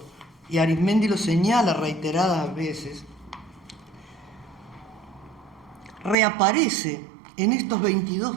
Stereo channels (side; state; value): left; drops out; at 6.2 s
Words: y Arismendi lo señala reiteradas veces, reaparece en estos